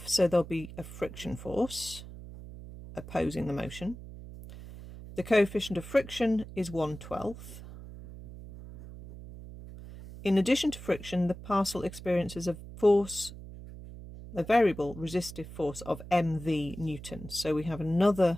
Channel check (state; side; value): noise; right; hum, 14 dB below the sound